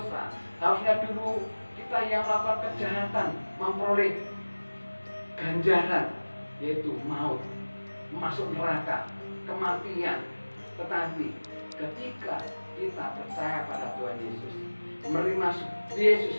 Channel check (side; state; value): both; inverted; correlation -1.00